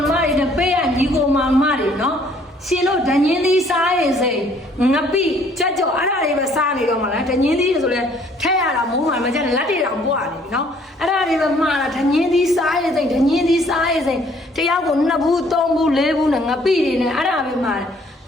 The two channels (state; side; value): normal; both; correlation 0.61